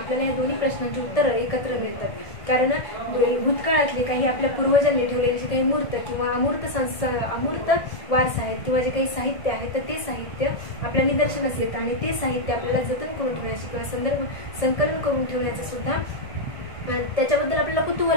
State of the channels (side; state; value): right; late; 1.7 ms